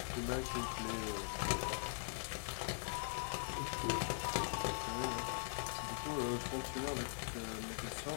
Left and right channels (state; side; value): silent; right; digital silence